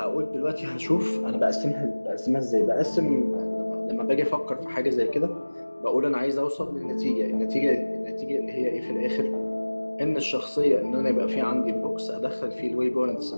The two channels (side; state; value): both; inverted; correlation -1.00